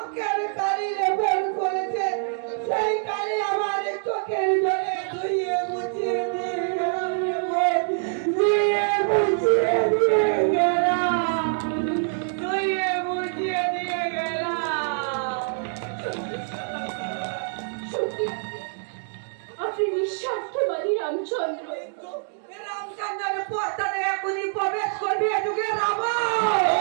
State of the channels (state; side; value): silent; left; digital silence